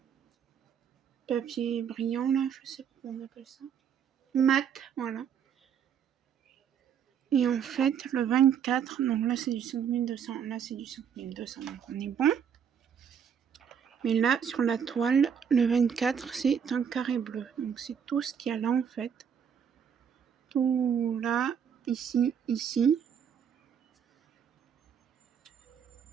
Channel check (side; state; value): left; quieter; 7.8 dB